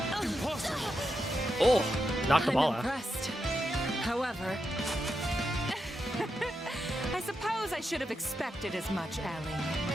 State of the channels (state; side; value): normal; both; correlation 0.86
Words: Impossible. Oh, knock the ball I'm out. impressed. However, I suppose I should have expected as much, Ellie.